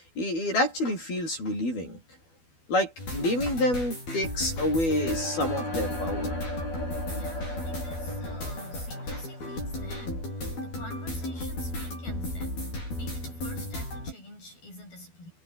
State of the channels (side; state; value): right; late; 12 ms